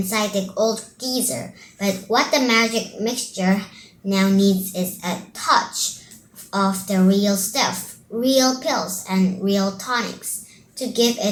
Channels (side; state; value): both; identical; correlation 1.00